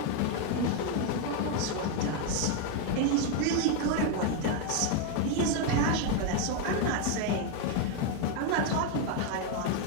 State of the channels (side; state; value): both; different; correlation 0.01